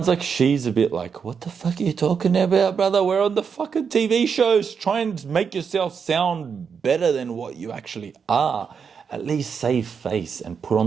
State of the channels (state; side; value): quieter; left; 6.4 dB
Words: like she's a bit like, what the fuck are you talking about, brother? We're on the fucking TV shows. Try and make yourself sound better than what you actually are. At least save face and put